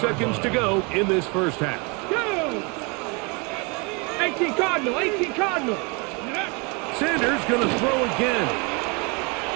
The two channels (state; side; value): quieter; left; 30.1 dB